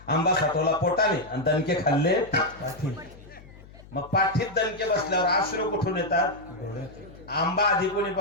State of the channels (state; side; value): noise; left; hum, 21 dB below the sound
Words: आंबा साठवला पोटाने आणि दणके खाल्ले पाठीने. मग पाठीत दणके बसल्यावर अश्रू कुठून येतात? आंबा आधी कोणी